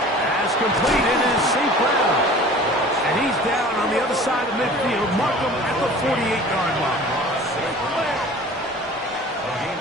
completed is St. Brown. And he's down on the other side of midfield. Mark him at the 48-yard line. A gain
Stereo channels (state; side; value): normal; both; correlation 0.44